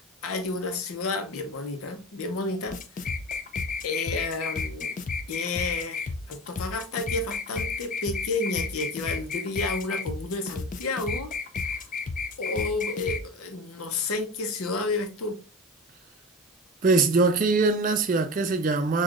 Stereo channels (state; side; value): normal; both; correlation 0.31